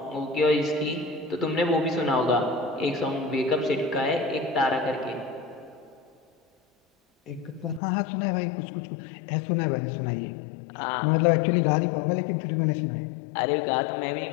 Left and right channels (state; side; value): drops out; right; at 7.8 s